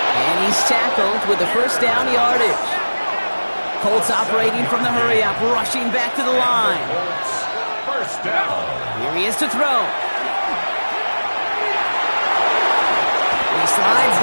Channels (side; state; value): both; inverted; correlation -1.00